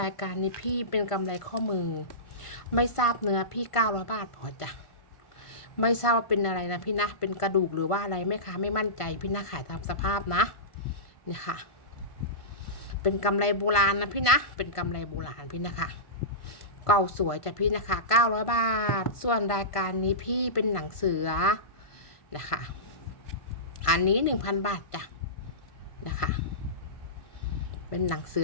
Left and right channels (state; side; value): late; right; 1.5 ms